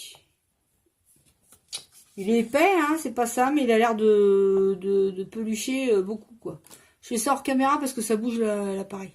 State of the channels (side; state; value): both; identical; correlation 1.00